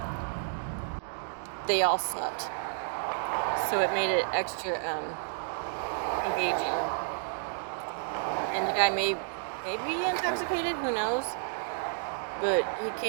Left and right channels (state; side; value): silent; left; digital silence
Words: they all sucked, so it made it extra engaging. And the guy may be intoxicated, who knows? But he